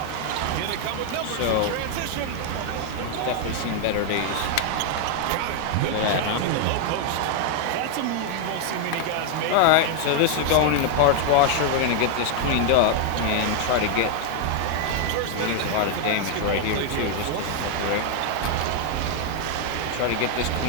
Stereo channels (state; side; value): different; both; correlation 0.00